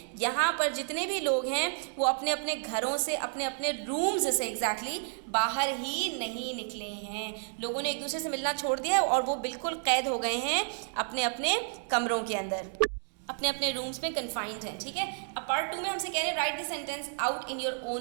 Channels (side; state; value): left; silent; digital silence